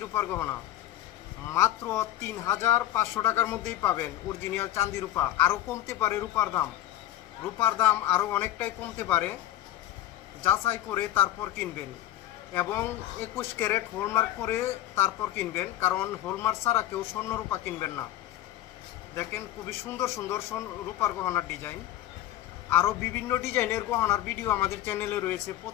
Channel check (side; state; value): right; quieter; 13.2 dB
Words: রূপার গহনা মাত্র 3,500 টাকার মধ্যেই পাবেন অরিজিনাল চাঁদি রূপা। আরও কমতে পারে রূপার দাম আরও অনেকটাই কমতে পারে, যাচাই করে তারপর কিনবেন এবং 21 ক্যারেট হলমার্ক করে তারপর কিনবেন, কারণ হলমার্ক ছাড়া কেউ স্বর্ণ রূপা কিনবেন না। দেখেন খুবই সুন্দর সুন্দর রূপার গহনার ডিজাইন। আরও বিভিন্ন ডিজাইনের গহনার ভিডিও আমাদের চ্যানেলে রয়েছে,